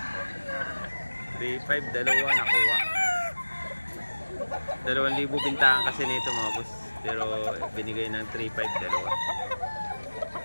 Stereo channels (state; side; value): inverted; both; correlation -1.00